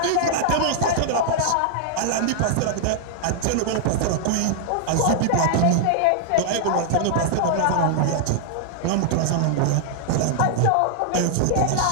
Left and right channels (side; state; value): both; different; correlation -0.01